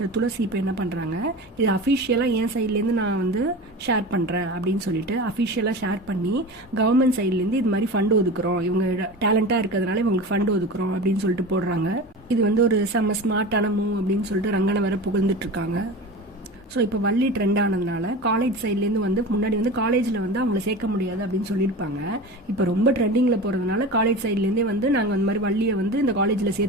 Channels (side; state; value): both; normal; correlation 0.30